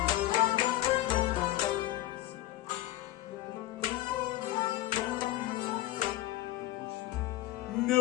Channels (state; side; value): quieter; right; 16.1 dB